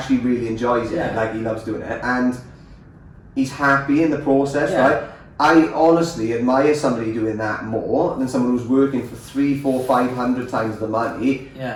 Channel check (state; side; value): identical; both; correlation 1.00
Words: really enjoys it. Like he loves doing it, and he's happy in the process, right? I honestly admire somebody doing that more than someone who's working for 300, 400, 500 times the money,